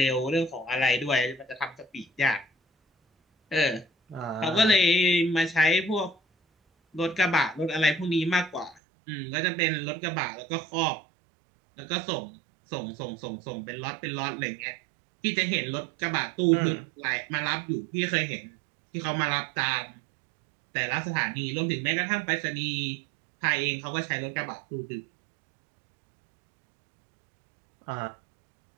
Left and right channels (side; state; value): left; drops out; at 8.8 s